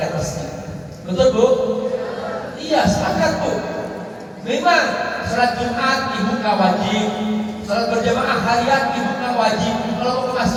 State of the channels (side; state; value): both; identical; correlation 1.00